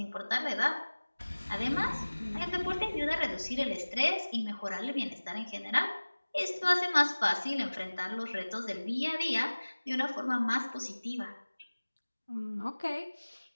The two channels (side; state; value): both; inverted; correlation -1.00